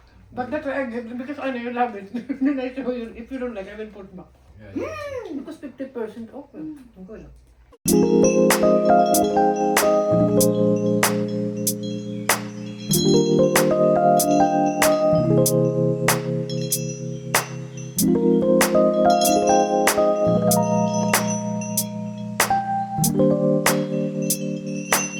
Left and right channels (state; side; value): identical; both; correlation 1.00